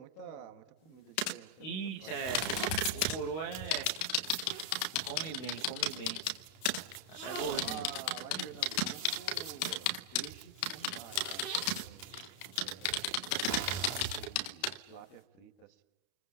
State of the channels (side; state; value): right; late; 32 ms